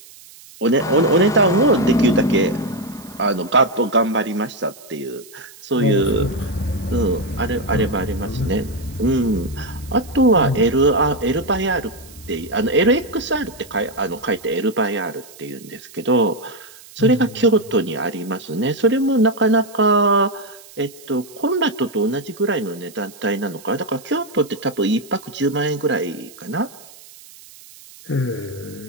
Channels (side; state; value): right; noise; hiss, 21 dB below the sound